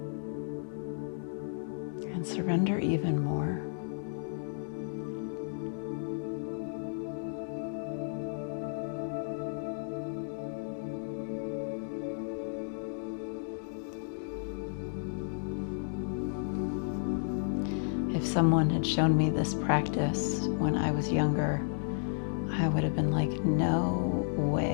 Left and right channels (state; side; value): silent; right; digital silence